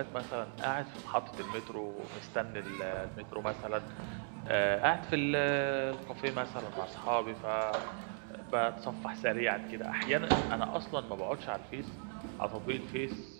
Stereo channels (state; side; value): silent; left; 53 dB below the other